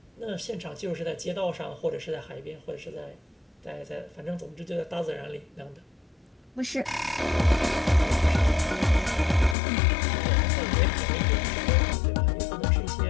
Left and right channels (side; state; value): right; drops out; at 9.6 s